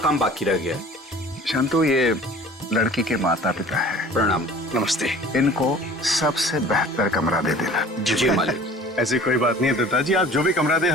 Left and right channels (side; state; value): both; normal; correlation 0.46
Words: बाकी रह गया है। शांतु, ये लड़की के माता पिता है। प्रणाम। नमस्ते। इनको सबसे बेहतर कमरा दे देना। जी मालिक। ऐसी कोई बात नहीं है दत्ता जी, आप जो भी कमरा दे